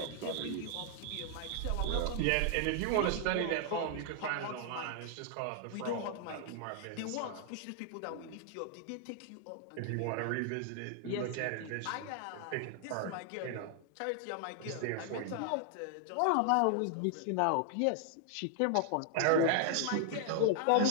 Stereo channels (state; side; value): different; both; correlation 0.00